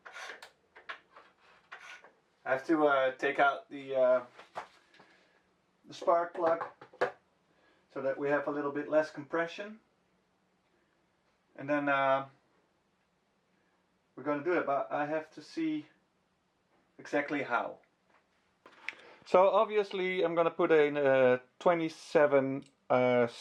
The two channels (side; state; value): both; identical; correlation 1.00